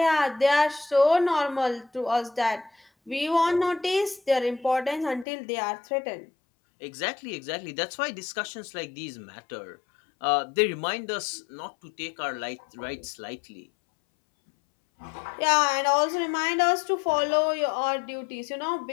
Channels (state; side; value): drops out; right; at 5.2 s